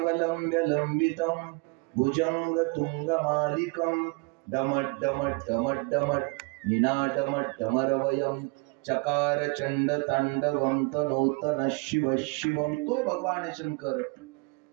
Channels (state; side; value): quieter; left; 31.2 dB